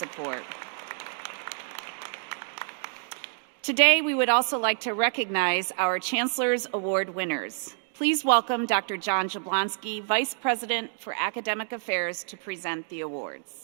Today, we would also like to recognize our Chancellor's Award winners. Please welcome Dr. John Jablonski, Vice President for Academic Affairs, to present the awards.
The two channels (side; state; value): left; silent; digital silence